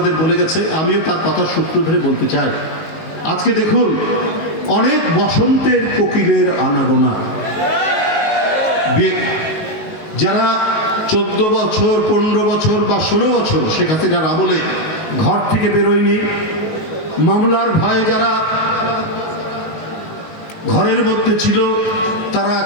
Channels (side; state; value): right; late; 19 ms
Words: বলে গেছে, আমিও তার কথার সূত্র ধরে বলতে চাই। আজকে দেখুন, অনেক বসন্তের কোকিলের আনাগোনা, যারা 14 বছর 15 বছর বা 16 বছর শেখ হাসিনার আমলে ঘর থেকে বেরোয়নি, মামলার ভয়ে যারা ঘরের মধ্যে ছিল, তারা